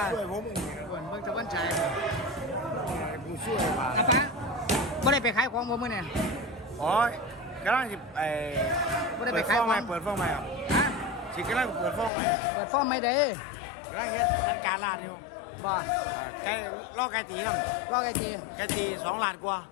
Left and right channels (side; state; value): right; drops out; at 12.1 s